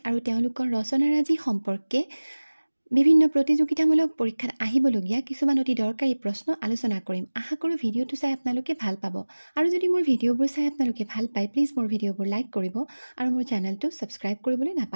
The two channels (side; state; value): both; inverted; correlation -1.00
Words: আৰু তেওঁলোকৰ ৰচনাৰাজি সম্পৰ্কে বিভিন্ন প্ৰতিযোগিতামূলক পৰীক্ষাত আহিবলগীয়া কিছুমান অতি দৰকাৰী প্ৰশ্ন আলোচনা কৰিম। আশা কৰোঁ ভিডিঅ'টো চাই আপোনালোকে ভাল পাব। আৰু যদি মোৰ ভিডিঅ'বোৰ চাই আপোনালোকে ভাল পায় প্লিজ মোৰ ভিডিঅ'বোৰ লাইক কৰিব আৰু মোৰ চেনেলটো ছাবস্ক্ৰাইব কৰিবলৈ